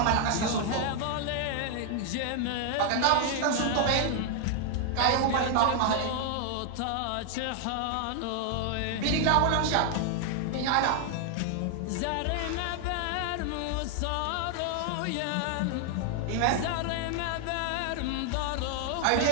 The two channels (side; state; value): both; different; correlation 0.00